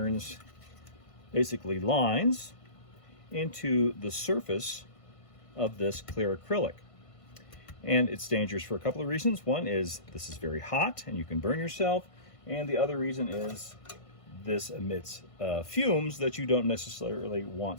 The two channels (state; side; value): late; right; 1.5 ms